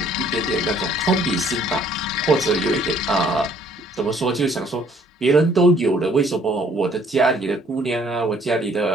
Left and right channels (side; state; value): both; normal; correlation 0.61